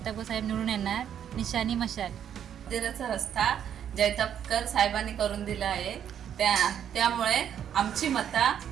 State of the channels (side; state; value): left; quieter; 9.3 dB